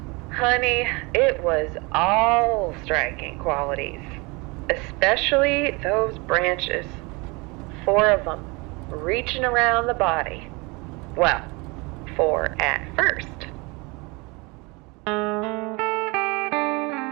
Honey, it was all striking qualities. Especially those branches. 4 of them, reaching around the body. Well, 4 at first.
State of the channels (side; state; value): left; quieter; 27.0 dB